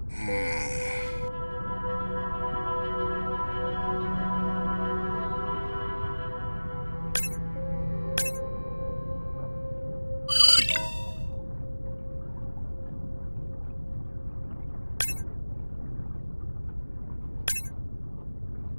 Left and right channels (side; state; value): both; inverted; correlation -1.00